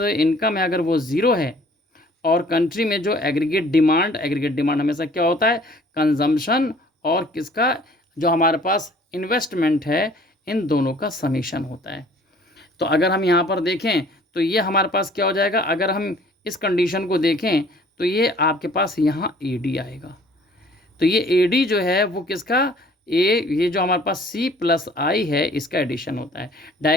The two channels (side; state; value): both; normal; correlation 0.54